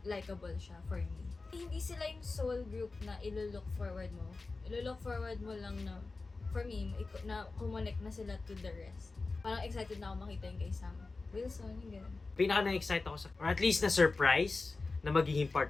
likable siya for me. Hindi sila yung sole group na ilo-look forward mo. Ilo-look forward mo lang na, for me, na kumonek na sila to the rest. Parang excited na ako makita yung kay Sam Wilson, yung gano'n. Pinaka na-excite ako or at least na-surprise na magiging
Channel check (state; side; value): quieter; right; 3.7 dB